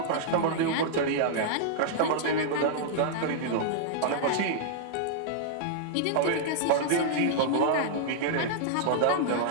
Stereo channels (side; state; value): both; different; correlation -0.01